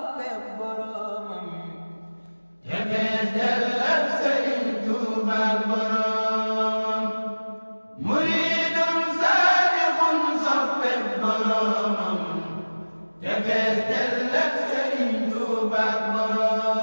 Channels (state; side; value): inverted; both; correlation -1.00